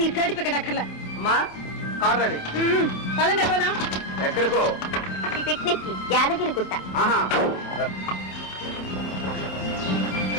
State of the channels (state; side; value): late; right; 28 ms